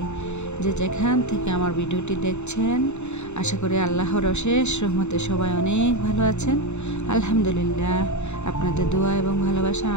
যে যেখান থেকে আমার ভিডিওটি দেখছেন, আশা করি আল্লাহর অশেষ রহমতে সবাই অনেক ভালো আছেন। আলহামদুলিল্লাহ, আপনাদের দোয়া এবং ভালোবাসা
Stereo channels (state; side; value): late; right; 0.82 ms